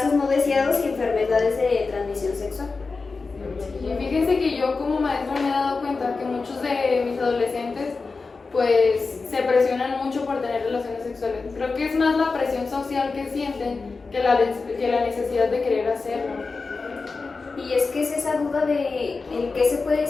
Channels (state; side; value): quieter; right; 4.2 dB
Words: no deseados y enfermedades de transmisión sexual. Y fíjense que yo como maestra me he dado cuenta que muchos de mis adolescentes pues se presionan mucho por tener relaciones sexuales. Creo que es más la presión social que sienten que la necesidad de querer hacerlo. Y es que es esa duda de el que se puede